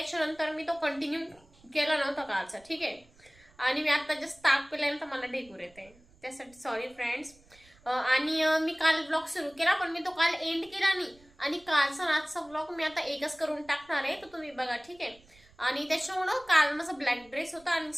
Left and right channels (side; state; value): right; noise; rumble, 28 dB below the sound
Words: मी तो कंटिन्यू केला नव्हता कालचा, ठीक आहे. आणि मी आता जस्ट ताक पिल्यानंतर मला ढेकूर येते, त्यासाठी सॉरी फ्रेंड्स. आणि मी काल ब्लॉग सुरू केला पण मी तो काल एंड केला नाही. आणि कालचा आजचा ब्लॉग मी आता एकच करून टाकणार आहे, तर तुम्ही बघा, ठीक आहे. आणि त्याच्यामुळं काल माझा ब्लॅक ड्रेस होता आणि